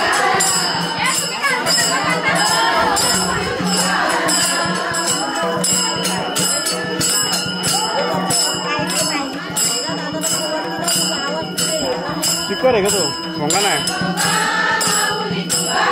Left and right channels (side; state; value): both; identical; correlation 1.00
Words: स्पीकर आहे का तो भोंगा नाही